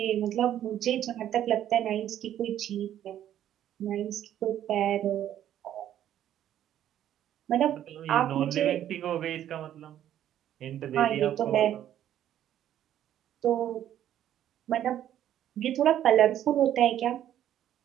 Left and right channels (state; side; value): quieter; left; 11.3 dB